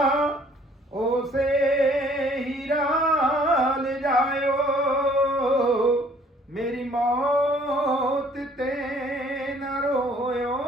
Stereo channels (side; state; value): both; normal; correlation 0.58